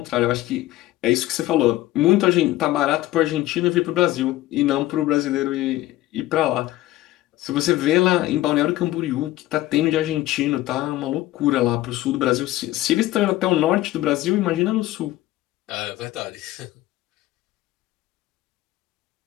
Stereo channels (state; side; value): quieter; right; 16.0 dB